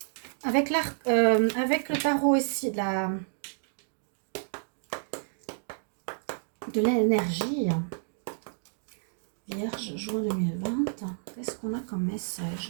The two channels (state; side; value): silent; left; digital silence